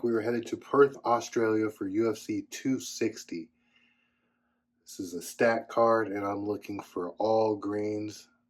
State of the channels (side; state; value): both; identical; correlation 1.00